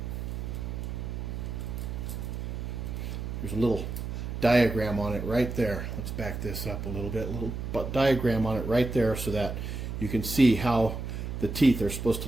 there's a little diagram on it right there. Let's back this up a little bit. A little diagram on it right there so that you can see how the teeth are supposed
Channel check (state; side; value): noise; right; hum, 5 dB below the sound